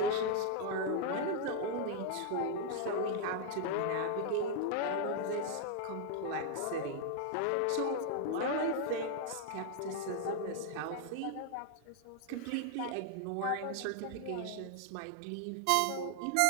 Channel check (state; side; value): different; both; correlation 0.00